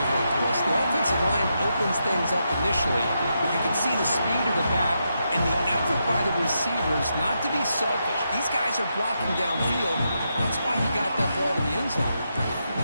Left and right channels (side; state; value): both; inverted; correlation -0.83